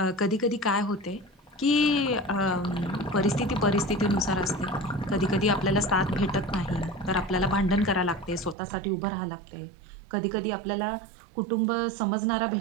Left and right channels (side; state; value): left; drops out; at 8.6 s